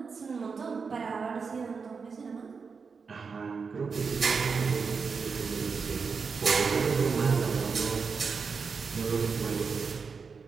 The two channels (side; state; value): left; quieter; 5.3 dB